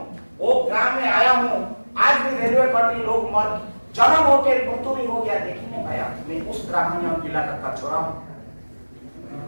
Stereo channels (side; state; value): both; inverted; correlation -1.00